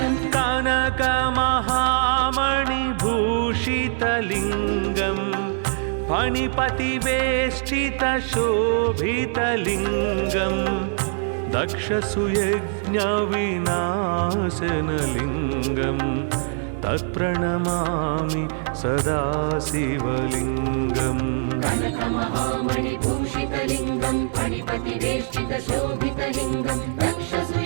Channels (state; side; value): silent; left; digital silence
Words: कनकमहामणिभूषितलिङ्गम् फणिपतिवेष्टितशोभितलिङ्गम् दक्षसुयज्ञविनाशनलिङ्गम् तत्प्रणमामि सदा शिवलिङ्गम् कनकमहामणिभूषितलिङ्गं फणिपतिवेष्टितशोभितलिङ्गं